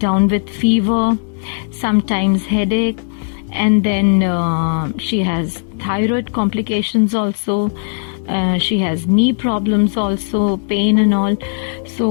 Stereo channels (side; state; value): right; silent; digital silence